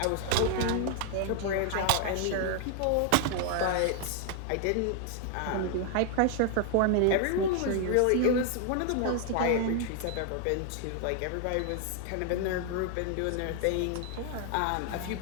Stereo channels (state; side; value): different; both; correlation 0.00